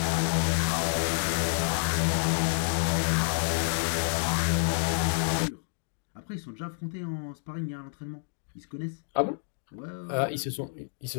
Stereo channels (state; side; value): silent; right; digital silence